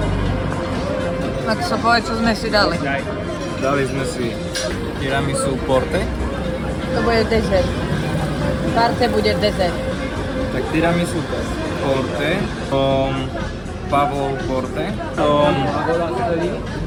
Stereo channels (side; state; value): both; identical; correlation 1.00